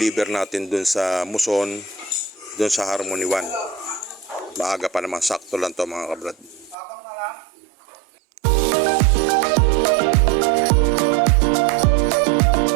natin dun sa Muson, dun sa Harmony 1. Maaga pa naman, sakto lang to mga kabrad.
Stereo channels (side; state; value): left; drops out; at 6.8 s